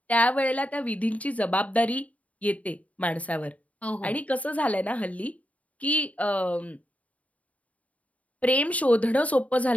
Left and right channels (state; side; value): late; right; 0.069 ms